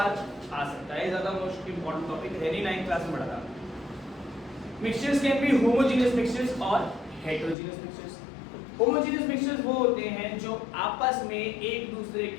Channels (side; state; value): right; drops out; at 7.6 s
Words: आ सकता है। ज्यादा मोस्ट इंपॉर्टेंट टॉपिक है नहीं, 9th क्लास में पढ़ा था। Mixtures can be homogeneous mixtures और हेटेरोजेनियस मिक्सचर्स। होमोजेनियस मिक्सचर्स वो होते हैं जो आपस में एक दूसरे